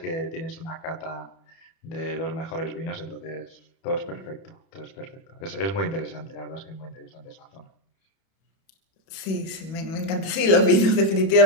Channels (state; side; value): late; right; 31 ms